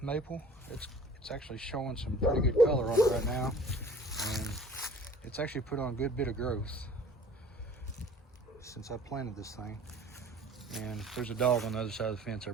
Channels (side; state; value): both; normal; correlation 0.48